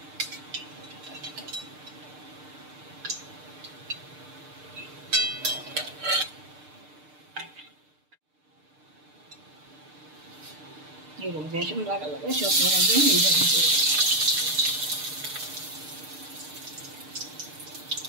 এরকম বেসন লাগালে সব বড়াগুলো এইভাবে করে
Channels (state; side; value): late; left; 6.6 ms